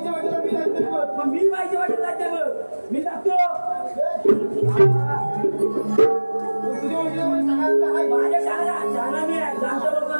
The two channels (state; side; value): inverted; both; correlation -1.00